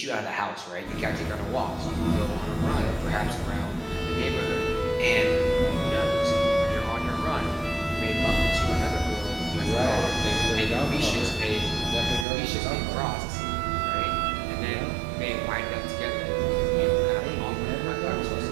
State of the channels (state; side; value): drops out; left; at 12.2 s